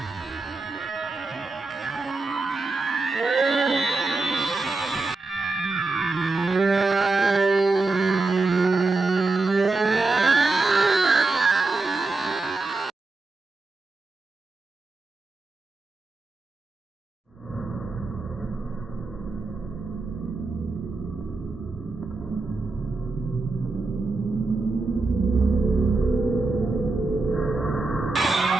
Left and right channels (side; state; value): left; quieter; 3.5 dB